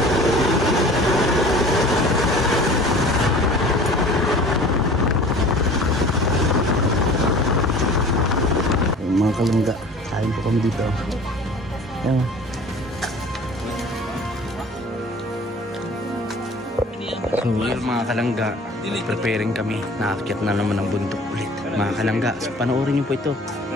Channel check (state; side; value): normal; both; correlation 0.45